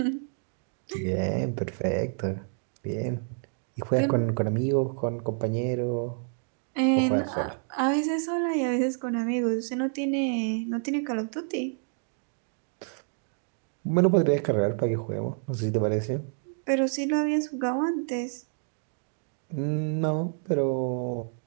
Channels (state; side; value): silent; left; 59 dB below the other